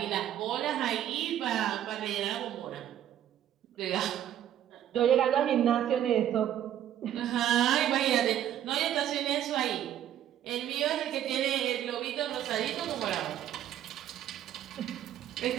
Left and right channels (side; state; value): left; quieter; 11.1 dB